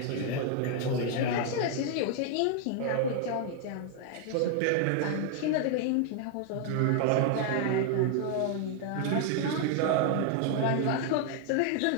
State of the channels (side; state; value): both; different; correlation 0.00